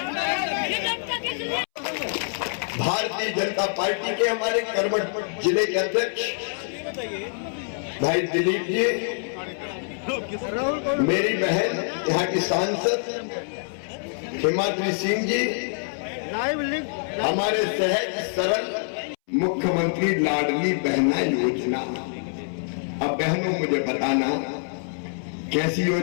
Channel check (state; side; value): silent; right; 62 dB below the other